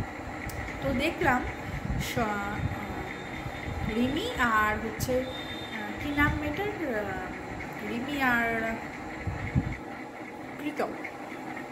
তো দেখলাম রিমি আর হচ্ছে কি নাম মেয়েটার, রিমি আর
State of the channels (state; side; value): identical; both; correlation 1.00